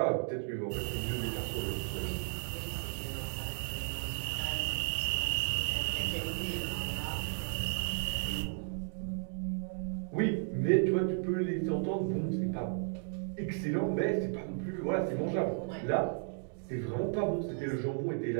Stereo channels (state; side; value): silent; left; 55 dB below the other